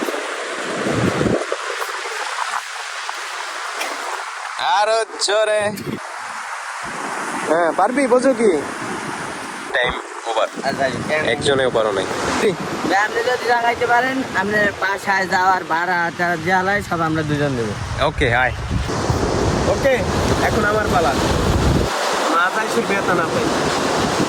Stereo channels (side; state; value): both; identical; correlation 1.00